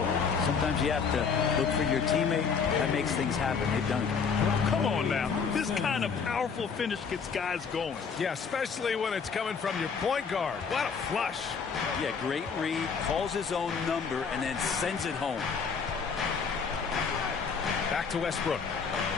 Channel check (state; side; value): quieter; right; 5.8 dB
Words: sometimes you have to look for your teammate. That makes things happen. They've done it. Come on now. This kind of powerful finish gets guys going. Yeah, especially when it's coming from your point guard. What a flush. Yeah, great read, calls his own number, and then sends it home. Back to Westbrook.